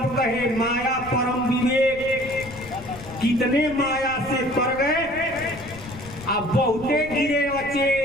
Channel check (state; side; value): noise; left; rumble, 16 dB below the sound